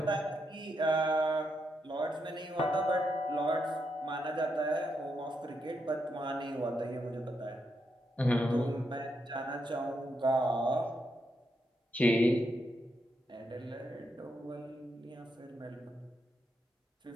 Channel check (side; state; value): both; normal; correlation 0.81